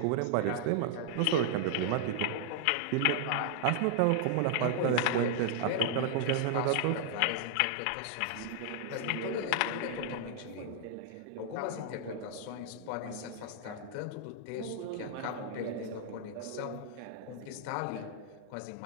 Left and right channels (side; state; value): both; different; correlation 0.00